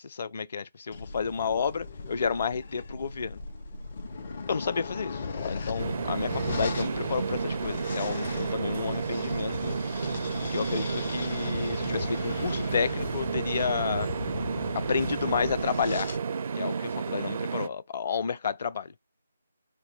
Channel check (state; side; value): inverted; both; correlation -0.74